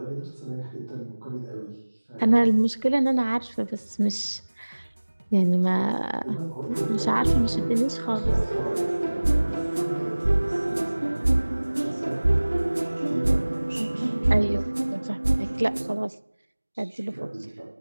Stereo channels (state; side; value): inverted; both; correlation -1.00